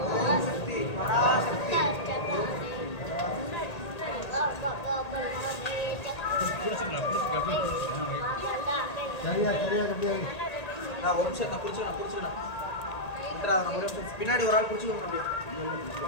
ओम शक्ति पराशक्ति நான் ஒரு நிமிஷம் நான் குடிச்சுக்கணும் நம்ம ஒரு நிமிஷம் பின்னாடி ஒரு ஆள் குடிச்சுக்கணும் அப்படியே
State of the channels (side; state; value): right; late; 1.8 ms